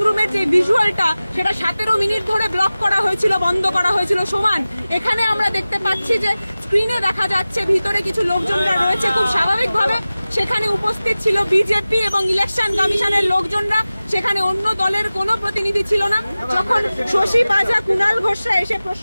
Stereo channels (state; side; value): inverted; both; correlation -0.97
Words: রুমের যে ভিজুয়ালটা, সেটা 17 মিনিট ধরে ব্লক করা হয়েছিল, বন্ধ করা হয়েছিল। সমান এখানে আমরা দেখতে পাচ্ছি যে স্ক্রিনে দেখা যাচ্ছে ভিতরে কিছু লোকজনরা রয়েছে, খুব স্বাভাবিকভাবে সেখানে উপস্থিত ছিল বিজেপি এবং ইলেকশন কমিশনের লোকজনরা, সেখানে অন্য দলের কোনো প্রতিনিধি ছিল না। যখন শশী পাজা, কুণাল ঘোষরা এসে